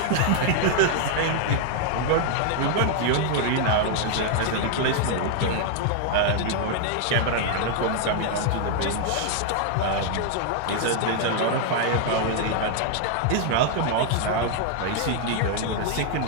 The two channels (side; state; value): both; different; correlation 0.00